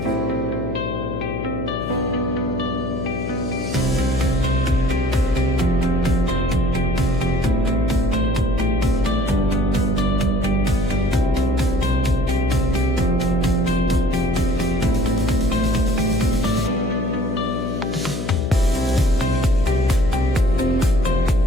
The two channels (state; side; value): noise; left; hum, 5 dB below the sound